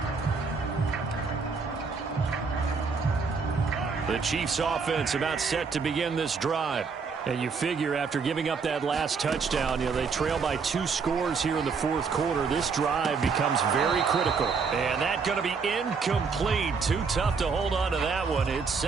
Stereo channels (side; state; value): left; quieter; 5.2 dB